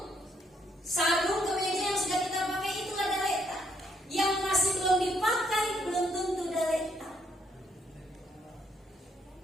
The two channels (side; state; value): both; normal; correlation 0.72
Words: sarung, kemeja yang sudah kita pakai, itulah galeta. Yang masih belum dipakai belum tentu galeta.